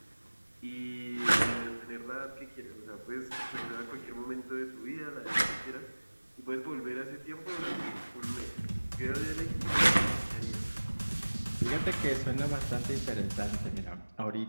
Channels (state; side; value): inverted; both; correlation -1.00